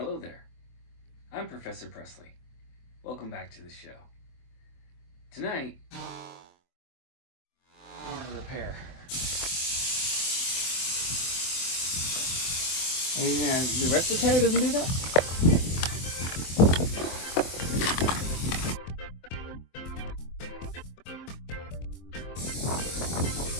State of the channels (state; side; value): late; right; 24 ms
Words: there, I'm Professor Presley. Welcome back to the show. Tonight, repair. Yeah, the rest of the tire doesn't do that?